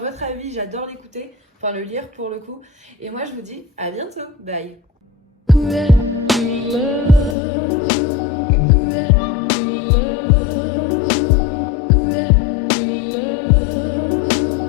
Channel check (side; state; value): right; drops out; at 7.4 s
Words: avis, j'adore l'écouter, enfin le lire pour le coup. Et moi je vous dis à bientôt, bye.